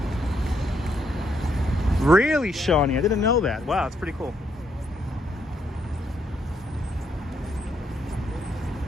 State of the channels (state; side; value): normal; both; correlation 0.75